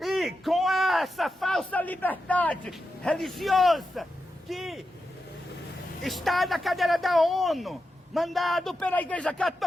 com essa falsa liberdade religiosa que está na cadeira da ONU, mandado pela Igreja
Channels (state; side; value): normal; both; correlation 0.89